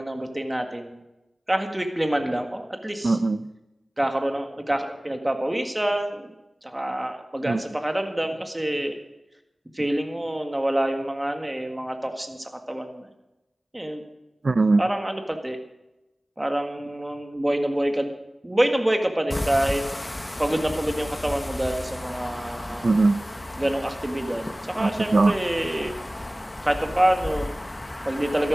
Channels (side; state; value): both; normal; correlation 0.98